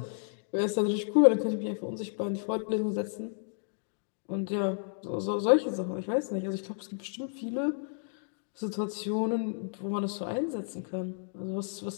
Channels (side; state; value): right; silent; digital silence